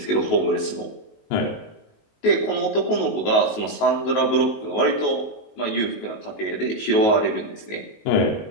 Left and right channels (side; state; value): right; late; 19 ms